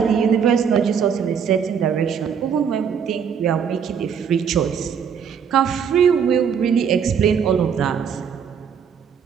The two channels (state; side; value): quieter; left; 7.3 dB